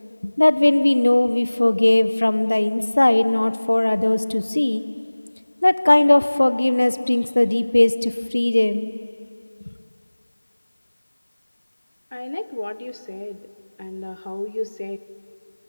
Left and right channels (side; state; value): both; inverted; correlation -1.00